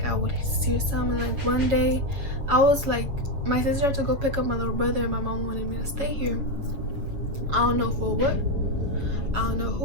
I would see something. Like one day I was like, my sister had to go pick up my little brother, and my mom wanted me to stay here. I don't know for what. I don't know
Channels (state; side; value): late; left; 7.3 ms